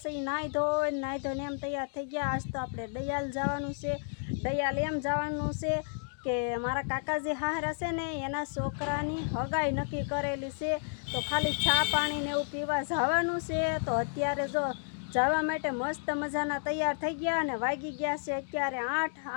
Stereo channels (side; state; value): right; silent; digital silence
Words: છે। નાહી ધોઈને એમ તૈયાર થઈ ગયા। આજ તો આપણે દયાલ જવાનું છે। દયાલ એમ જવાનું છે કે મારા કાકાજી હાહરા છે ને એના છોકરાની હગાઈ નક્કી કરેલી છે। તો ખાલી ચા પાણી ને એવું પીવા જવાનું છે। તો અત્યારે જો જવા માટે મસ્ત મજાના તૈયાર થઈ ગયા અને વાગી ગયા છે અત્યારે